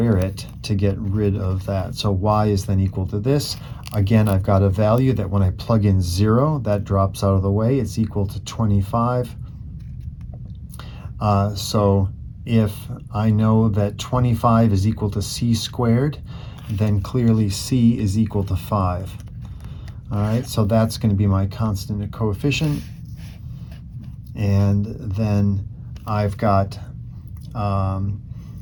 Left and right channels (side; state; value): both; identical; correlation 1.00